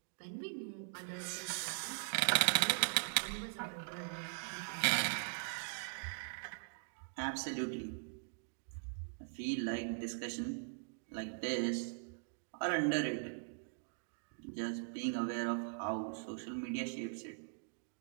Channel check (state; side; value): silent; left; digital silence